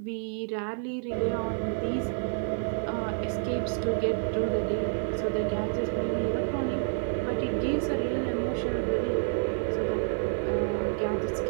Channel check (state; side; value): silent; left; 59 dB below the other